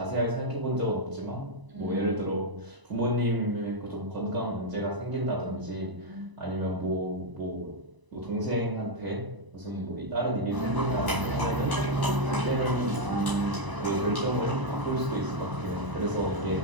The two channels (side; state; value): left; late; 1.0 ms